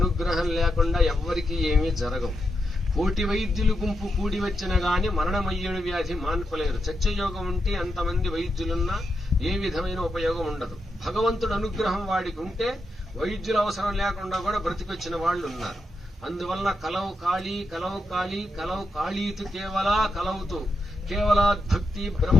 లేకుండా ఎవ్వరికీ ఏమీ జరగవు. కోటి వైద్యులు గుంపు కూడి వచ్చిన గాని మరణమయ్యేడు వ్యాధి మాన్పలేరు. చర్చయోగం ఉంటే అంతమంది వైద్యులున్నా ఏ విధమైన ఉపయోగం ఉండదు. భగవంతుడు అనుగ్రహం వాడికి ఉంటే వైద్యుల అవసరం లేకుండా కూడా బ్రతికొచ్చిన వాళ్ళు ఉన్నారు. అందువలన కలవు కాళీతు కలవుతూ కేవలాద్భక్తి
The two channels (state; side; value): normal; both; correlation 0.85